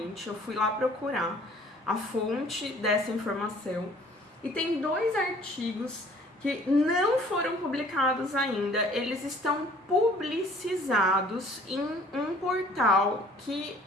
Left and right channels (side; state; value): both; normal; correlation 0.54